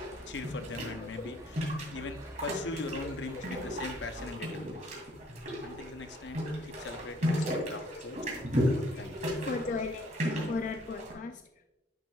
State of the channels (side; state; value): both; normal; correlation 0.62